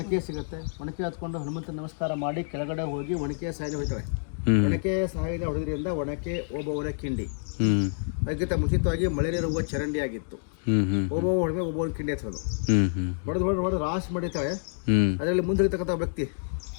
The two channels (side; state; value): right; silent; digital silence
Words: ಸಿಗುತ್ತೆ. ಒಣಕೆ ಹತ್ಕೊಂಡು ಹನುಮಂತ ನಮಸ್ಕಾರ ಮಾಡಿ ಕೆಳಗಡೆ ಹೋಗಿ ಒಣಕೆ ಸಾಯಿನ ಹೊಯ್ತಾಳೆ. ಒಣಕೆ ಸಾಯಿನ ಹೊಡೆದ್ರಿಂದ ಒಣಕೆ ಓಬವ್ವನ ಕಿಂಡಿ. ಅದಕ್ಕಿಂತ ಮುಂಚಿತವಾಗಿ ಮಳೆ ನೀರು ಹೋಗುವ ಚರಂಡಿ ಆಗಿತ್ತು. ಓಬವ್ವ ಹೊಡೆದ್ರೆ ಓಬವ್ವನ ಕಿಂಡಿ ಹಚ್ಚೋದು. ಹೊಡೆದು ರಾಶಿ ಮಾಡಿರ್ತಾಳೆ. ಅದರಲ್ಲಿ ಮುಂದಿರ್ತಕ್ಕಂಥ ವ್ಯಕ್ತಿ